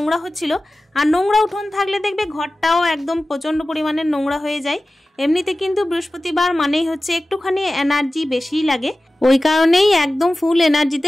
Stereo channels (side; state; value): both; normal; correlation 0.96